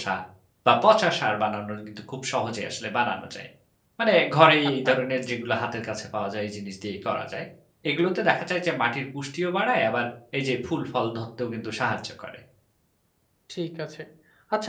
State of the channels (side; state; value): both; identical; correlation 1.00